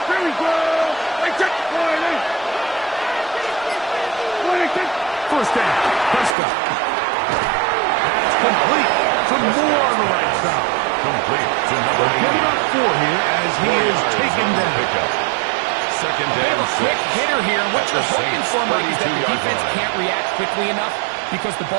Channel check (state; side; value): drops out; left; at 6.4 s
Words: First down, Prescott. That's complete to Moore on the right side. Complete to number 80. Getting up 4 here as he is taken down. Second They have down, a quick 6. hitter here. What you're That's the hoping Saints' for, Mike, is that the 32-yard defense line. can't react quickly enough because the